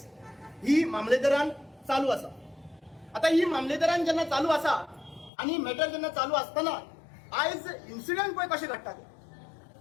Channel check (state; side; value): drops out; right; at 5.3 s